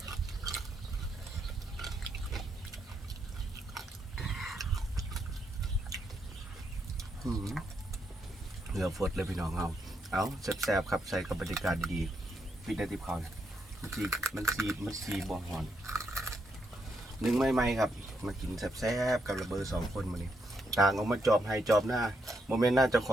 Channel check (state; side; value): normal; both; correlation 0.79